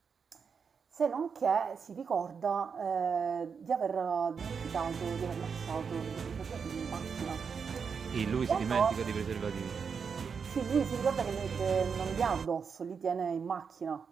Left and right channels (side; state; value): left; quieter; 6.1 dB